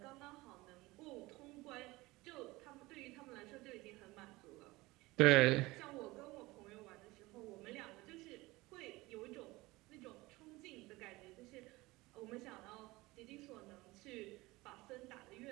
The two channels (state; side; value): quieter; left; 20.9 dB